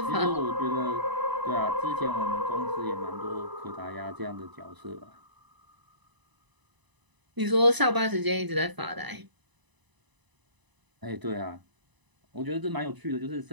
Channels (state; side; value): late; left; 1.0 ms